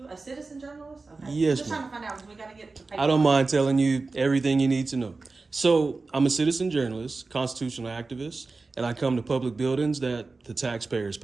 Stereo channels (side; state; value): left; quieter; 3.8 dB